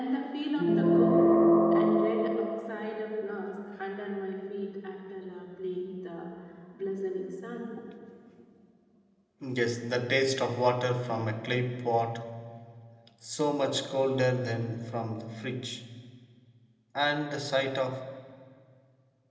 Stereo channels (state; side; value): identical; both; correlation 1.00